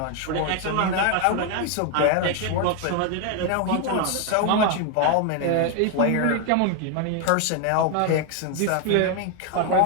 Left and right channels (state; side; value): different; both; correlation 0.01